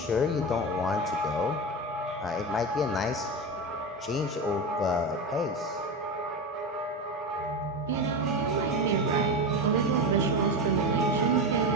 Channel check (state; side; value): normal; both; correlation 0.20